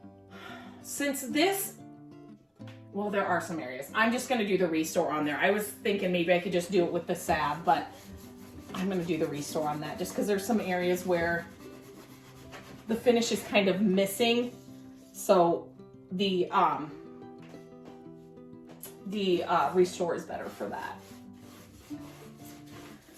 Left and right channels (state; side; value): identical; both; correlation 1.00